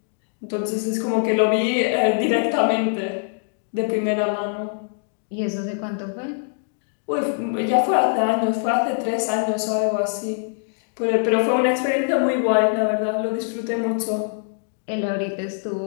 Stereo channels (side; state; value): right; silent; digital silence